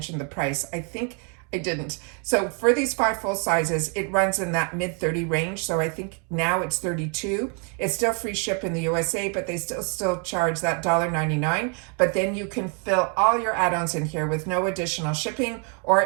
the price. I think I didn't. So for these 5 full sizes, it runs in that mid-30 range. So I think now it's 32. It's still free ship in the USA, but they still charge that $1.99. But then you can fill all your add-ons in here with no additional shipping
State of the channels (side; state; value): left; quieter; 38.6 dB